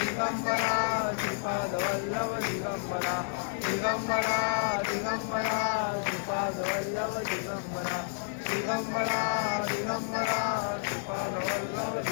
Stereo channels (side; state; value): right; silent; digital silence